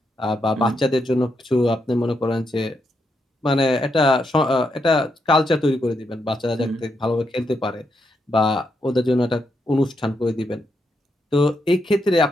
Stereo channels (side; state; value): both; normal; correlation 0.81